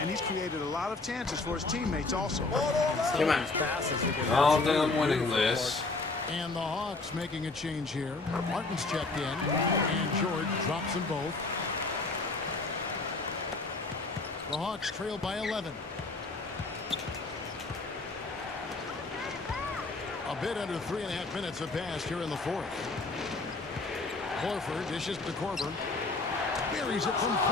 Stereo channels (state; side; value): quieter; right; 3.5 dB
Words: he's created a lot of chances for his teammates also. Come on. I don't think I'm winning this. And the Hawks making a change here. Martin's checked in, and George drops them both. The Hawks trail by 11. A bit under 3.5 minutes have passed here in the 4th. Horford dishes to Korver. Buries it from